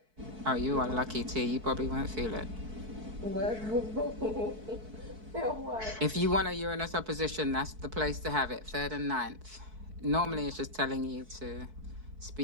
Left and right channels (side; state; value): left; late; 4.6 ms